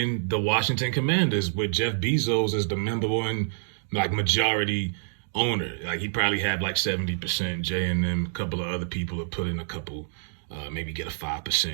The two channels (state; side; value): silent; left; digital silence